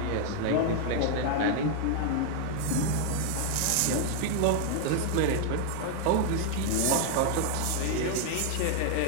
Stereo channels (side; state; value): both; different; correlation 0.00